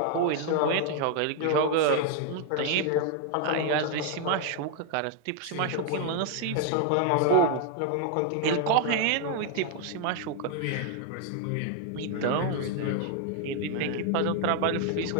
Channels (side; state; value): both; different; correlation 0.00